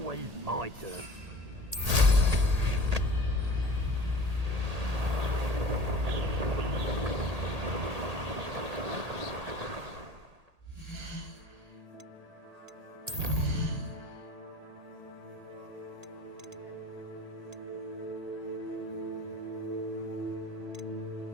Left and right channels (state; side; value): late; left; 1.8 ms